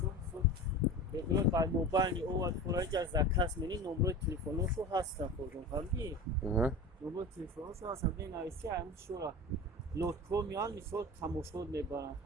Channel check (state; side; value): normal; both; correlation 0.31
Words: خود بدون بر موبایل او از خورایی که از دکست منی نمبر تلفنوشو هستن خودم فهمیدی؟ نمبر تلفنوشو هستن بین ایسی همین شورا لطکو میان میشود تماشا میبرن